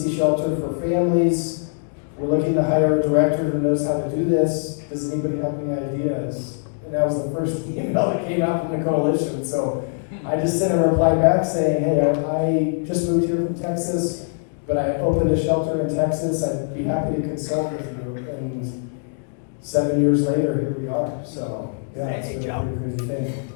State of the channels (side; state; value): right; silent; digital silence